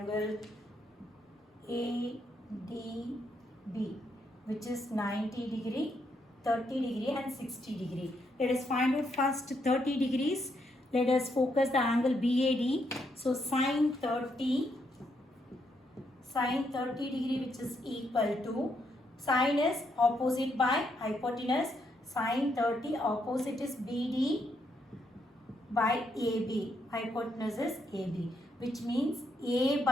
ADB, which is 90 degree, 30 degree and 60 degree. Let us find out first 30 degrees. Let us focus the angle BAD. So sine 30 degree, which is equal to, sine is opposite by hypotenuse, sine 30 opposite is BD by AB, hypotenuse is AB, which means A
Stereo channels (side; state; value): both; normal; correlation 0.77